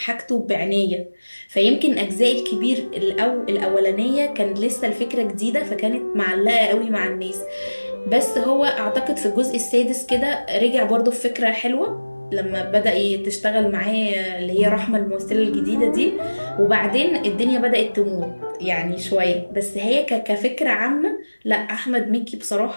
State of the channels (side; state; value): both; inverted; correlation -1.00